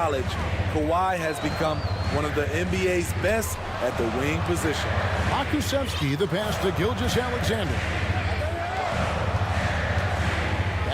Kawhi has become one of the NBA's best at the wing position. Pokusevski, the pass to Gilgeous-Alexander.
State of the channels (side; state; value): both; identical; correlation 1.00